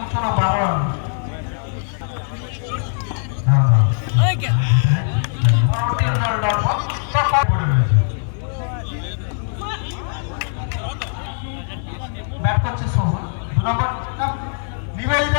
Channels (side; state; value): right; silent; digital silence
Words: 12 রান। পরবর্তী দল ডট বল পড়ে রয়েছে। ব্যাট করছে সোহন, 2 নম্বর